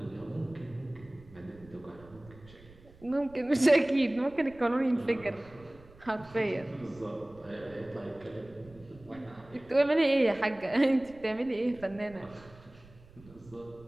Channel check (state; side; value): noise; right; rumble, 23 dB below the sound